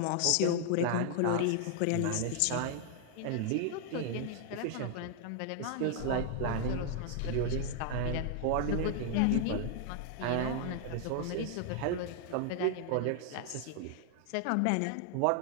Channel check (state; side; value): different; both; correlation 0.00